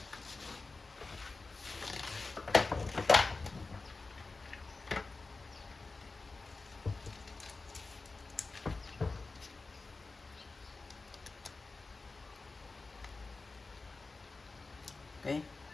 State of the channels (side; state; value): right; quieter; 3.7 dB